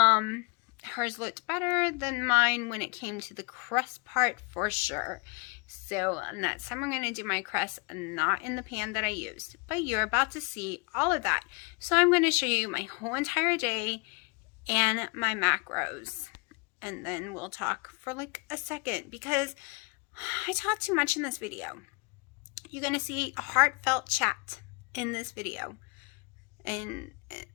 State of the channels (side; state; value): right; quieter; 32.8 dB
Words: looked better than mine when it came to the crust part for sure. So next time I'm going to do my crust not in the pan that I used, but you're about to see all of that. So I'm going to show you my whole entire day and my macros. And then we'll talk for like a second because I talk too much in this video. You're going to see a heartfelt chat in this video. And